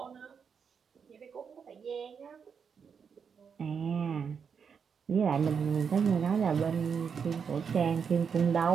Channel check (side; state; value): left; quieter; 6.5 dB